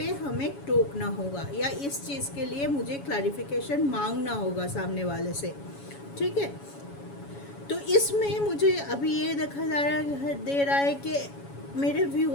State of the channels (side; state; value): right; late; 7.1 ms